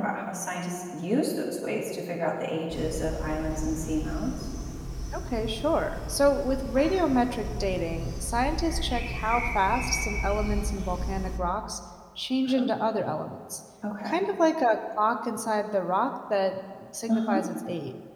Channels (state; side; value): identical; both; correlation 1.00